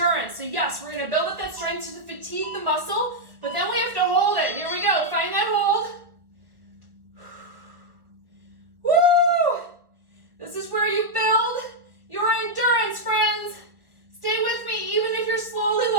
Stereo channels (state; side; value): late; left; 1.6 ms